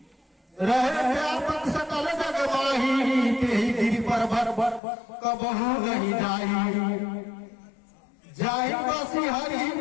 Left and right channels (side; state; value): right; drops out; at 4.8 s